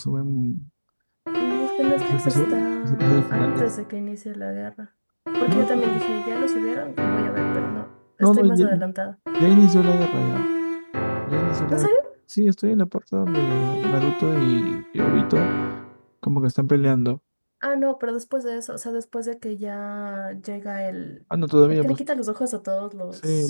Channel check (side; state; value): both; inverted; correlation -1.00